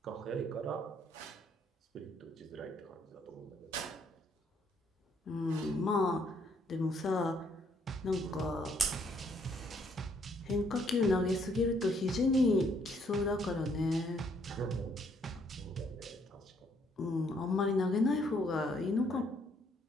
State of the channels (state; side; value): normal; both; correlation 0.68